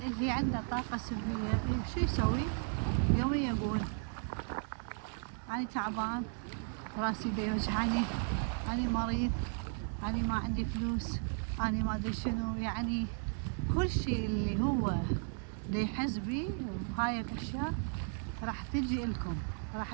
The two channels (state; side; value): silent; left; 54 dB below the other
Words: عنده طاقة سلبية شو يسوي؟ يومي يقول أنا تعبان، راسي دا يوجعني، أنا مريض، أنا ما عندي فلوس، أنا ما أدري شنو. يعني كل شيء اللي هو دا يحس بيه هاي الأشياء راح تجي إلكم،